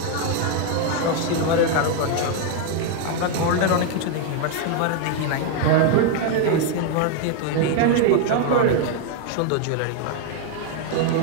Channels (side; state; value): both; different; correlation 0.01